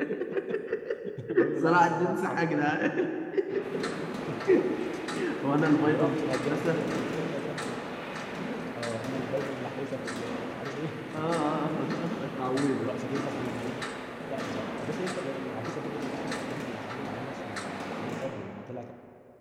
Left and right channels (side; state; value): both; identical; correlation 1.00